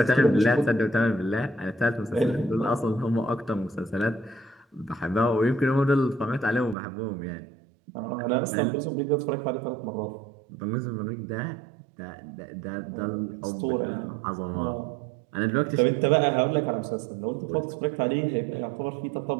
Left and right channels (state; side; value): drops out; left; at 6.8 s